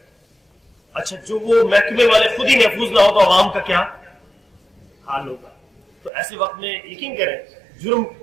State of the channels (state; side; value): drops out; left; at 6.1 s